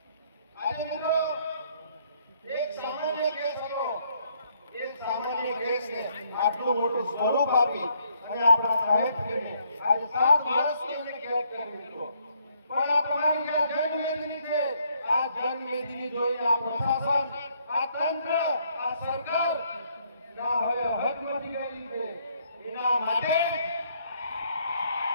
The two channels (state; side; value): inverted; both; correlation -0.69